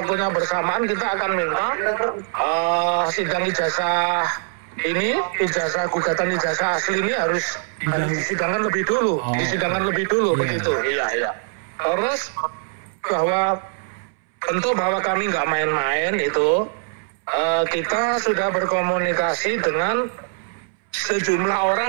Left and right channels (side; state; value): left; silent; 64 dB below the other